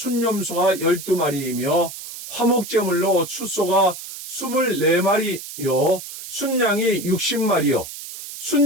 12마리이며 화목 제물로 숫소가 24마리요 순양이 60마리요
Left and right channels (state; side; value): noise; right; hiss, 11 dB below the sound